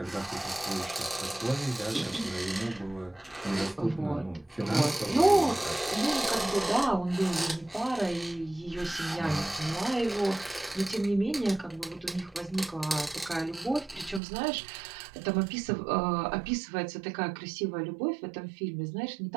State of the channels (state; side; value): drops out; left; at 14.2 s